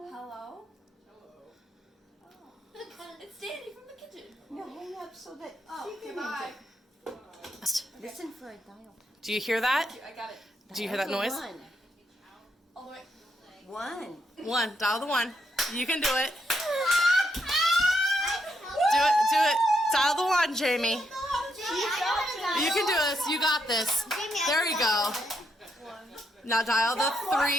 Hello? Oh. It's Danny from the kitchen. No, hang up so that Oh, she can goodbye. listen for a dial. Do you hear that? I got it. Do you hear that noise? All the way. One. One. Dial the one. You can do it. Do it. Do it. Dial the one, Jaymee. You can do this. You got this. There you go. Now dial the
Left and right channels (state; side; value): normal; both; correlation 0.79